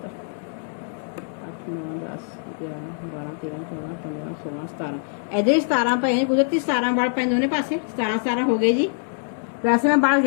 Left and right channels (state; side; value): silent; right; digital silence